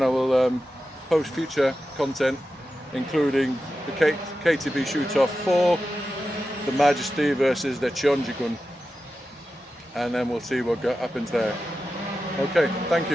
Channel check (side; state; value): both; normal; correlation 0.92